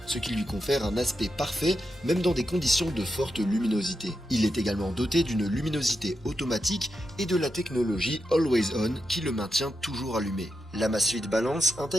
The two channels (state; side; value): normal; both; correlation 0.87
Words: ce qui lui confère un aspect parfait même dans des conditions de forte luminosité. Il est également doté d'une luminosité automatique et de la technologie Always On qui le maintient toujours allumé. L'Amazfit Balance